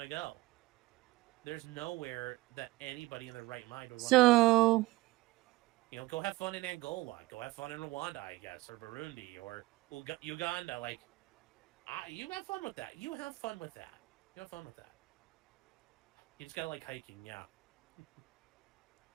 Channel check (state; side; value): quieter; left; 19.8 dB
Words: to go. There's nowhere that anybody in their right mind would want to go. Go have fun in Angola. Go have fun in Rwanda, I guess, or Burundi, or Uganda. You have fun with that. You have fun with that. You just got to like hiking, yeah.